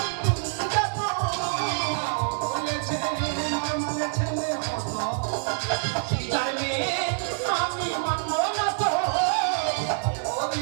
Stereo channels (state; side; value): silent; left; 61 dB below the other